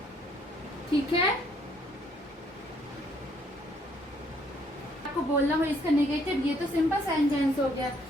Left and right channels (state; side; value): normal; both; correlation 0.66